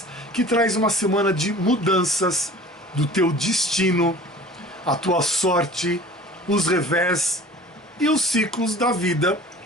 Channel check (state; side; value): normal; both; correlation 0.43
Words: que traz uma semana de mudanças do teu destino, a tua sorte, os revés e os ciclos da vida,